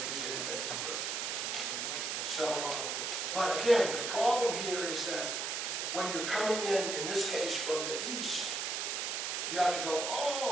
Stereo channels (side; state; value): right; noise; hiss, 1 dB below the sound